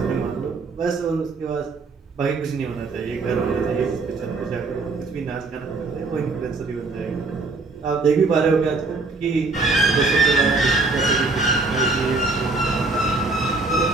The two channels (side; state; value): left; quieter; 3.7 dB